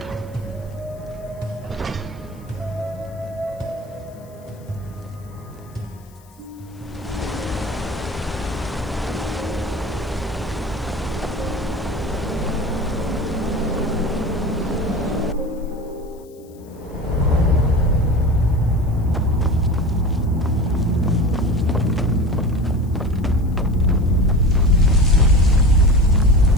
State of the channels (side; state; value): left; noise; hiss, 29 dB below the sound